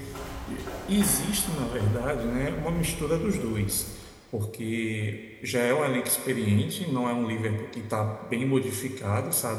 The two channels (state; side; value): identical; both; correlation 1.00